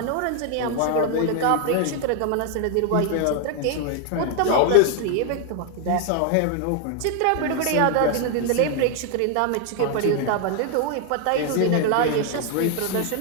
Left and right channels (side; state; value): both; different; correlation 0.00